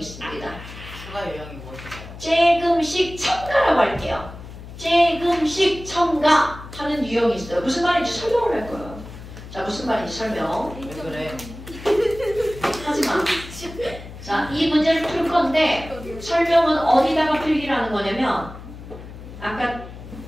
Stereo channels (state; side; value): noise; left; hum, 14 dB below the sound